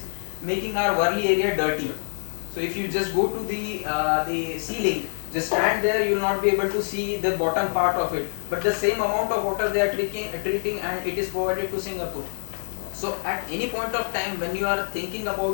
making our Worli area dirty. So if you just go to the ceiling, just stand there, you will not be able to see the bottom part of it. But the same amount of water they are treating, and it is provided to Singapore. So at any point of time when you are thinking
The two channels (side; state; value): right; silent; digital silence